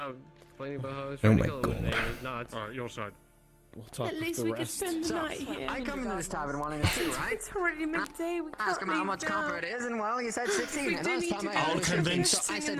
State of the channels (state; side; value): identical; both; correlation 1.00